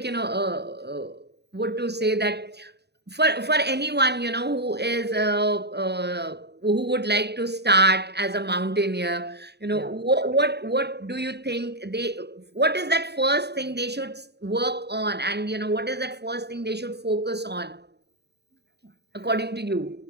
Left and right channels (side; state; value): left; late; 0.48 ms